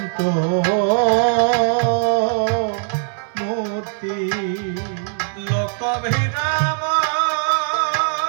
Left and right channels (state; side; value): silent; left; 66 dB below the other